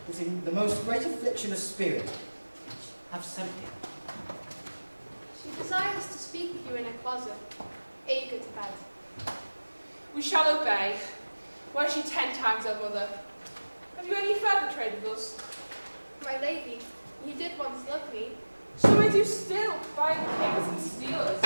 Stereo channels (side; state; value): both; inverted; correlation -1.00